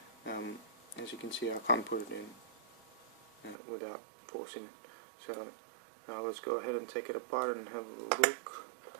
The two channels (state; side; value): drops out; left; at 3.6 s